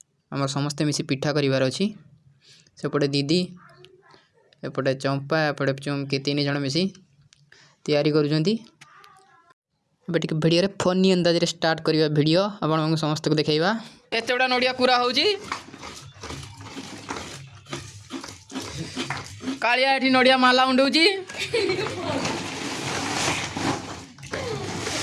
आम समस्ते मिसी पिठा करार अच्छी। सेपटे दीदी एपटे चंपा एपटे चुमकी तीन जन मिसी तैयारी करुँच। भिडियो फनी अंदाज स्टार्ट करवा भिडियो आप समस्त को देखा केते गुड़ा नड़िया पूरा हो कालिया एठी नड़िया माला उंडौची।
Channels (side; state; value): both; identical; correlation 1.00